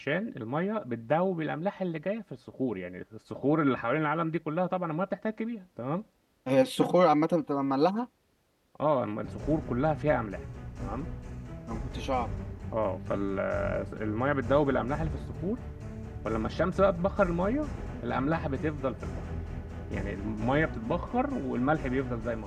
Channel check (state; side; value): identical; both; correlation 1.00